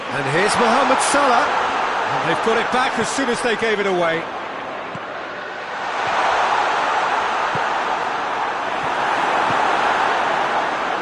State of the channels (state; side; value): identical; both; correlation 1.00